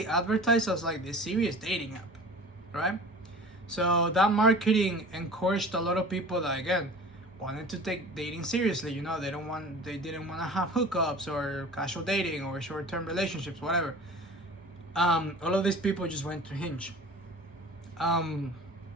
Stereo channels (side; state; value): both; normal; correlation 0.41